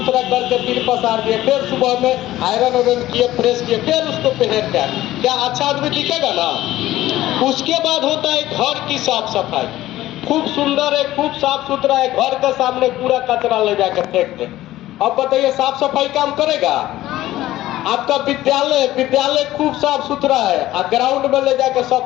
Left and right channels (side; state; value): right; quieter; 15.2 dB